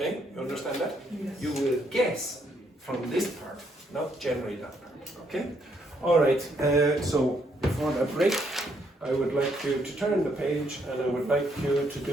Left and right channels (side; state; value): both; normal; correlation 0.73